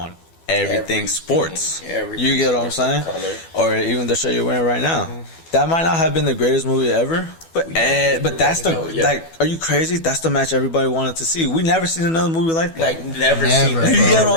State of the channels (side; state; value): right; late; 12 ms